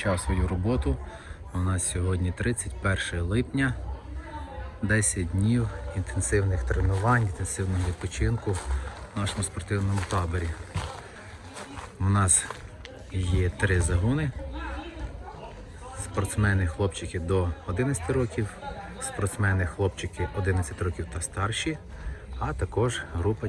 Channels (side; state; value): both; identical; correlation 1.00